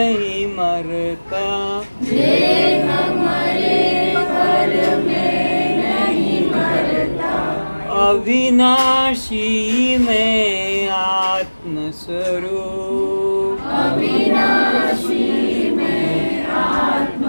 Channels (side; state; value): both; inverted; correlation -1.00